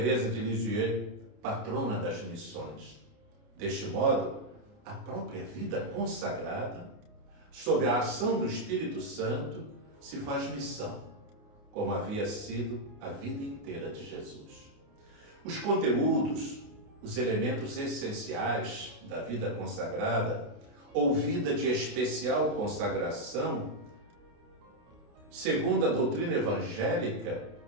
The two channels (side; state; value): left; late; 29 ms